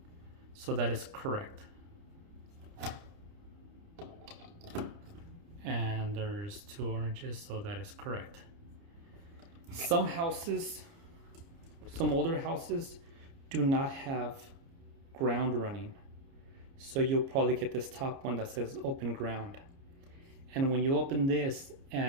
so that is correct. And there's 2 oranges, so that is correct. Some houses, some older houses, do not have ground running. So you'll probably get this top one that says open ground. And when you open this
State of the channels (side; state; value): left; late; 30 ms